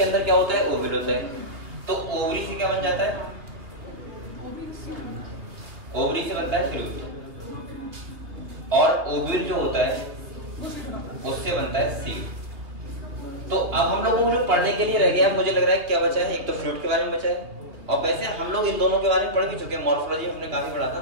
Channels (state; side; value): late; left; 2.7 ms